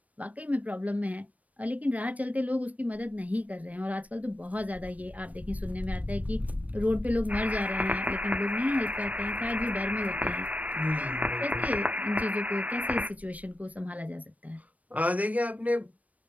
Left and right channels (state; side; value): late; left; 0.070 ms